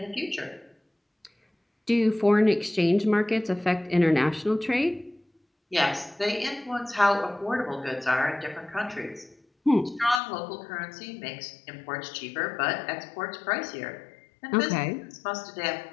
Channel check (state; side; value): drops out; right; at 10.2 s